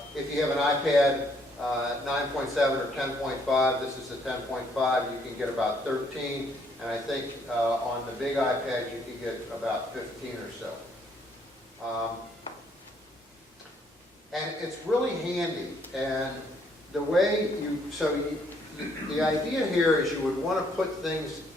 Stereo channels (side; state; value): both; normal; correlation 0.68